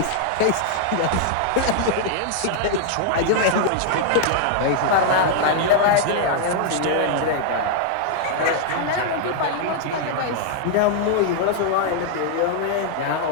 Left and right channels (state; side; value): different; both; correlation -0.01